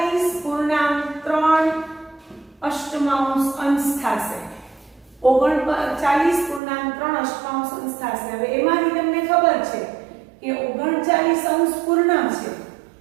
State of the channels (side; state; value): left; drops out; at 6.6 s